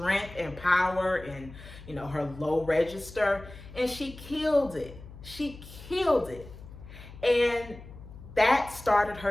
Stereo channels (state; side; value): noise; left; hum, 16 dB below the sound